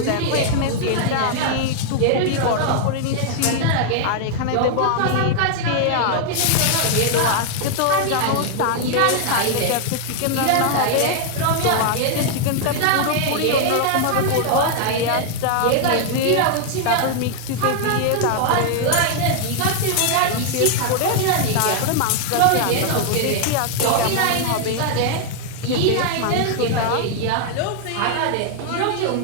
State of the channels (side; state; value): both; different; correlation 0.00